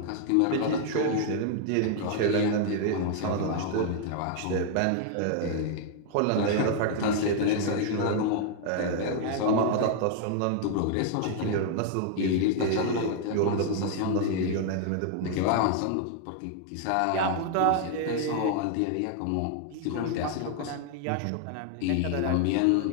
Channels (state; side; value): different; both; correlation 0.00